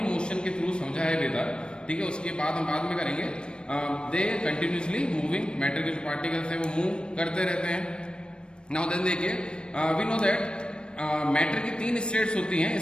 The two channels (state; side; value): late; right; 0.054 ms